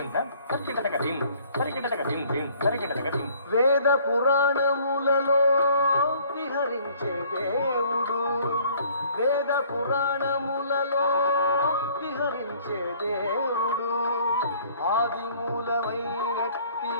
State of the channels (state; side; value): inverted; both; correlation -0.57